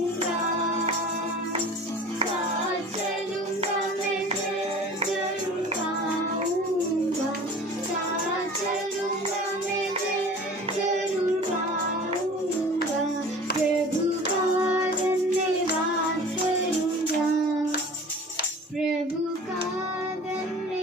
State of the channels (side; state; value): both; normal; correlation 0.42